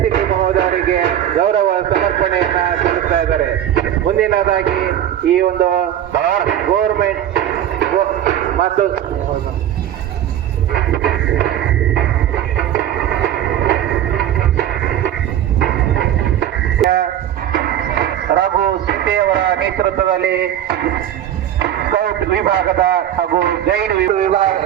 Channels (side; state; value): left; quieter; 11.1 dB